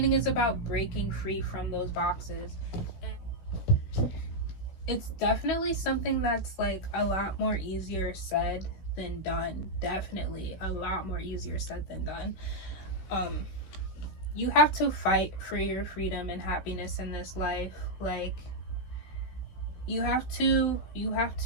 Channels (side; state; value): right; late; 16 ms